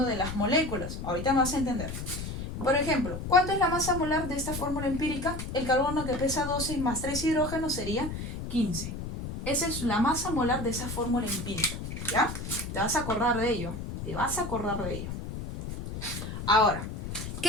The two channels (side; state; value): left; noise; rumble, 7 dB below the sound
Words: de las moléculas. Ahorita me vas a entender. Por ejemplo, ¿cuánto es la masa molar de esta fórmula empírica? El carbono que pesa 12 más 3 hidrógenos sería 15. Esa es la masa molar de esa fórmula empírica. ¿Ya? Te vas a acordar de ello. Ahora,